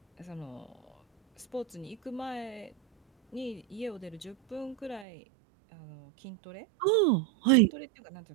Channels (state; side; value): drops out; left; at 5.1 s